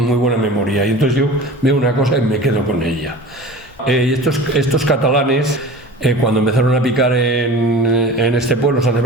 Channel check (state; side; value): normal; both; correlation 0.38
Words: buena memoria, y entonces yo veo una cosa y me quedo con ella. Y estos catalanes, cuando empezaron a picar en este pueblo, San